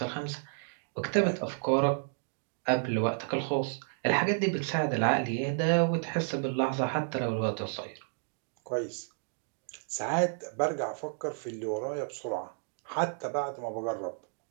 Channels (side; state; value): left; silent; digital silence